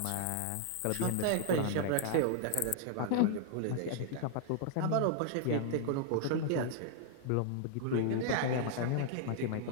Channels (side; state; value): both; different; correlation 0.00